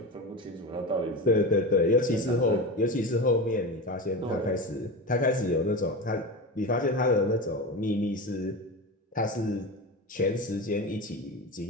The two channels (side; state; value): both; normal; correlation 0.24